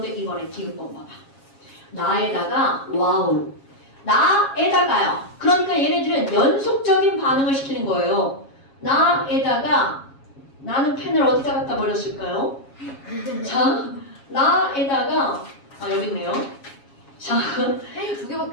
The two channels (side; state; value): right; late; 7.3 ms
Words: 이번에 디귿번 봐봐. 나에다가 와우. 나에다가요. 그러니까 얘네들은 연속적인 반응을 시키는 거예요. 나에다가 나는 펜을 어디다 갖다 버렸을까요? 자, 나에다가 여기 있네요. 자, 펜이